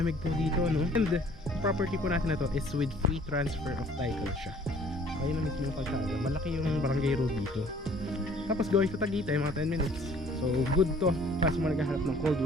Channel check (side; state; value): both; normal; correlation 0.55